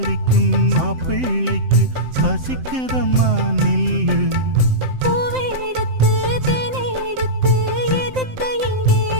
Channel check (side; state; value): left; late; 7.7 ms